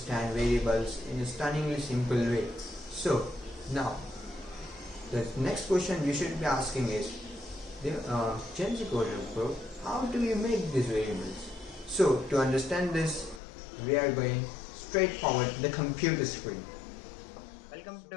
variables in a stunningly simple way. So now the next question you should be asking is, Gen Z Coder Pro, how do you make these variables? So to understand this, we are going straight forward to the computer screen. Welcome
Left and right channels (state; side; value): drops out; right; at 13.4 s